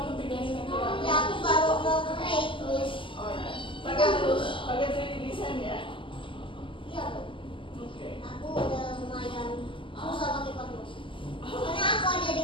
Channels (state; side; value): late; right; 0.25 ms